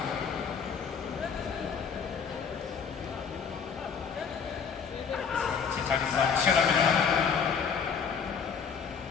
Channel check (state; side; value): quieter; right; 6.4 dB